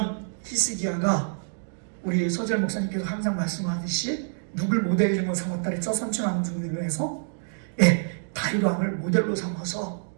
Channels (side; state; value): left; silent; digital silence